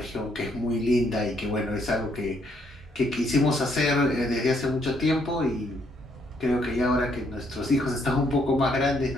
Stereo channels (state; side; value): normal; both; correlation 0.71